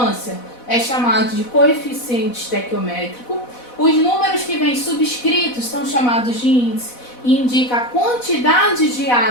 é chamado de coeficiente estequiométrico. Os números que vêm subscritos são chamados de índice e indica a quantidade de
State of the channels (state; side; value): late; right; 4.1 ms